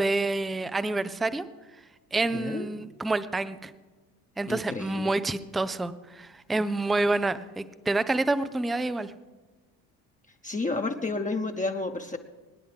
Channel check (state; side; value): normal; both; correlation 0.87